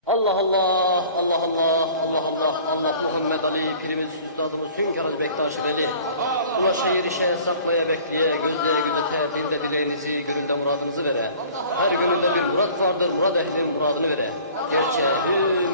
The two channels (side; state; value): both; inverted; correlation -0.48